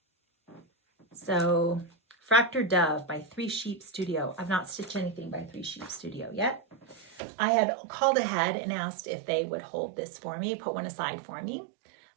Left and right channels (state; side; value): drops out; left; at 7.2 s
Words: So Fractured Dove by 3 Sheep Studio. I've not stitched anything by 3 Sheep Studio yet. I had called ahead and asked if they would hold this for me, put one aside for me.